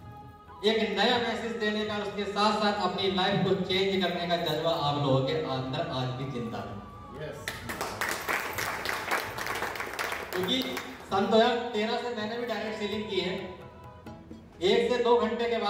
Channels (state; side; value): identical; both; correlation 1.00